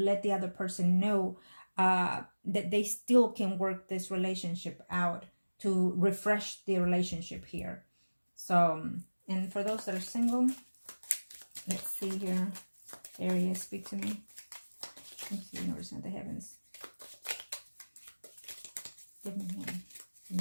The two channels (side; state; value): both; inverted; correlation -1.00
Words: the other person know that they still can work this relationship out to refresh the relationship here. So, and for those that are single, let's see here. Aries, speak to me. Let's see, universe and the heavens. Give me one. Give